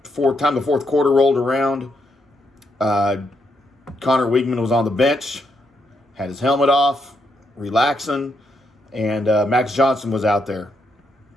time the fourth quarter rolled around, Connor Weigman was on the bench, had his helmet off, relaxing, and Max Johnson was out there.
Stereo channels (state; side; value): normal; both; correlation 0.78